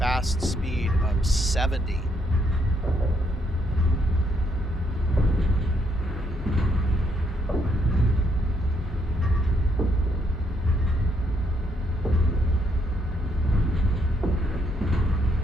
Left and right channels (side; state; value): both; normal; correlation 0.73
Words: speed of 70.